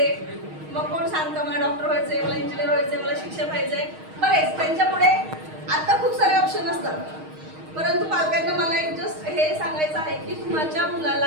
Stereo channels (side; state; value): left; late; 6.4 ms